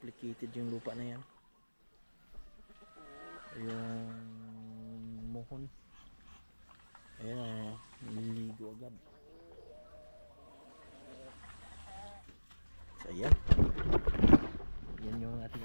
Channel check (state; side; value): inverted; both; correlation -1.00